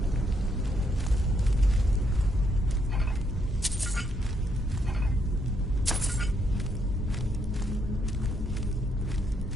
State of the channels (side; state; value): both; normal; correlation 0.75